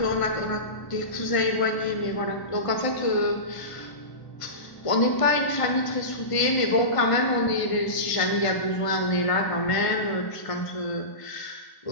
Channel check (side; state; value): right; late; 1.5 ms